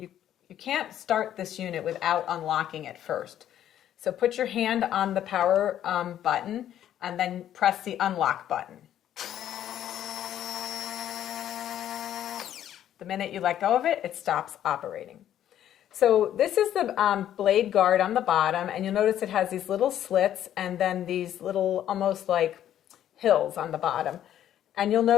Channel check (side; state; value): right; quieter; 11.1 dB